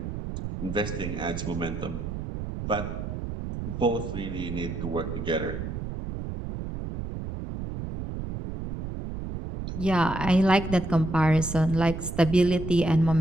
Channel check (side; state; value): right; noise; rumble, 6 dB below the sound